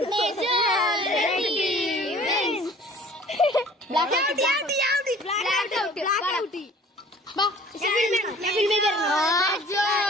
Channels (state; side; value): normal; both; correlation 0.50